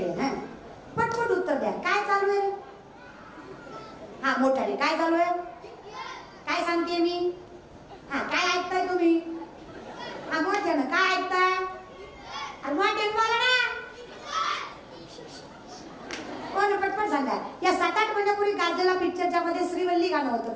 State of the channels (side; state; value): both; identical; correlation 1.00